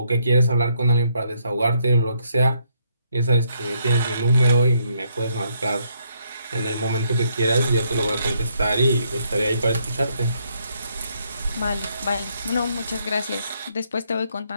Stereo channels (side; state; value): both; inverted; correlation -0.73